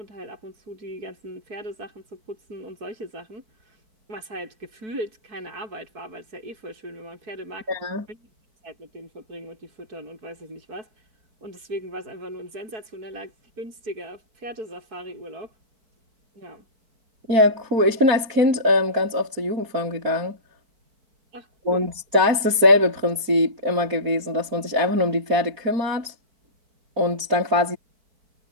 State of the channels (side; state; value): left; late; 4.2 ms